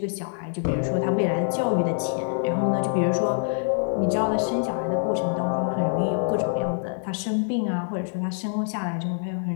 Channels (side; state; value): right; silent; 55 dB below the other